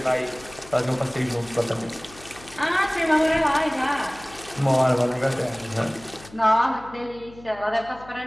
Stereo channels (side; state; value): left; noise; hum, 20 dB below the sound